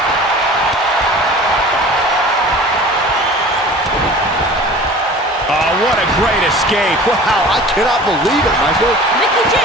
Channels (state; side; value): normal; both; correlation 0.42